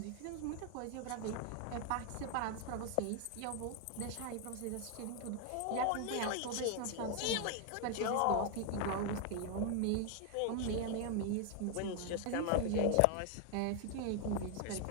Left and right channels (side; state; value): both; different; correlation 0.00